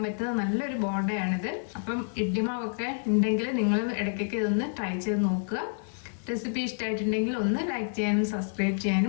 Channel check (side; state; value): right; silent; 59 dB below the other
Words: പറ്റുന്ന നല്ലൊരു ബോണ്ടയാണിത്. അപ്പം ഇഡ്ലി മാവൊക്കെ ഉണ്ടെങ്കിൽ നിങ്ങൾ ഇടയ്ക്കൊക്കെ ഇതൊന്ന് ട്രൈ ചെയ്ത് നോക്കുക. റെസിപ്പി ഇഷ്ടമായിട്ടുണ്ടെങ്കിൽ ഒന്ന് ലൈക്ക് ചെയ്യാനും സബ്സ്ക്രൈബ്